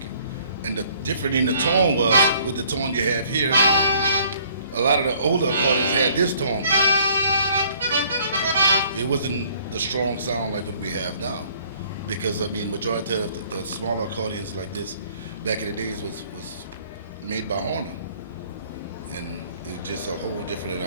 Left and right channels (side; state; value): both; inverted; correlation -0.59